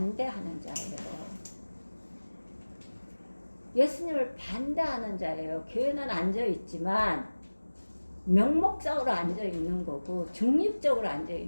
자예요. 예수님을 반대하는 자예요. 교회는 앉아있지만 명목적으로 앉아있는 거고 중립적으로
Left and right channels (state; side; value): inverted; both; correlation -1.00